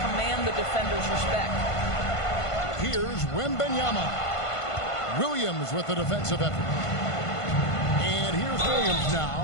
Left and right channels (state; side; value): late; right; 1.5 ms